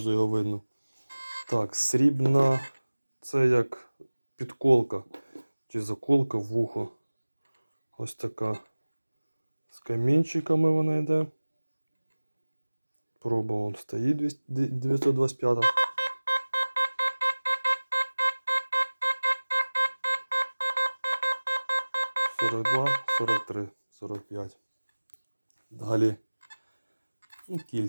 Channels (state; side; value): inverted; both; correlation -1.00